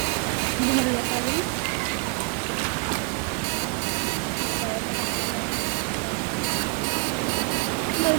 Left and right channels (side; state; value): left; quieter; 32.4 dB